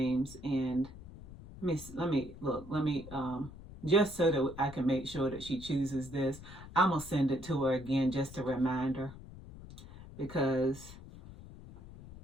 And let me just so that I can make sure that she chooses this, I'm gonna send it to her again just to remind her, because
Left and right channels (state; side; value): noise; left; rumble, 15 dB below the sound